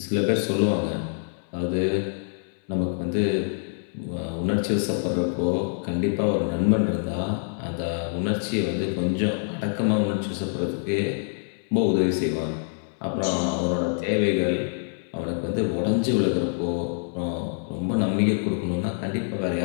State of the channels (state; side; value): silent; right; digital silence